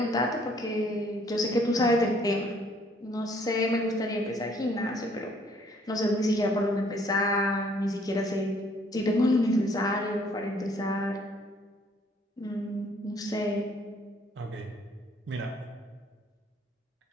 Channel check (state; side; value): normal; both; correlation 0.62